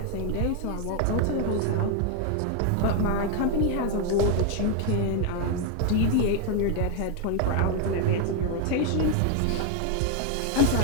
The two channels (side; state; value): both; different; correlation 0.01